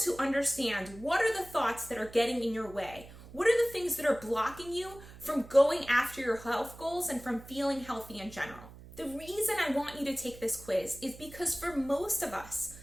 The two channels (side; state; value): right; noise; hum, 18 dB below the sound